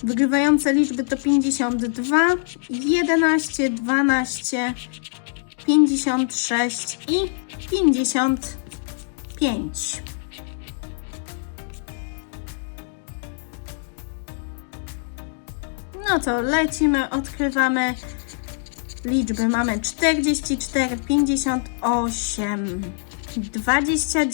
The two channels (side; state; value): right; silent; digital silence